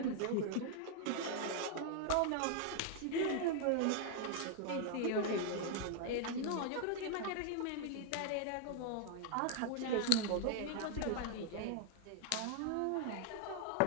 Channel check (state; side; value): different; both; correlation 0.00